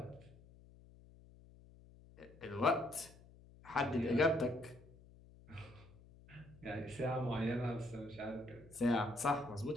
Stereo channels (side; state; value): left; noise; hum, 22 dB below the sound